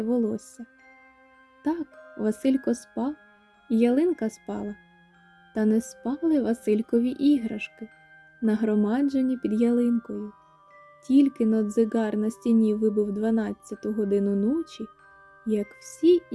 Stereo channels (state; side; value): identical; both; correlation 1.00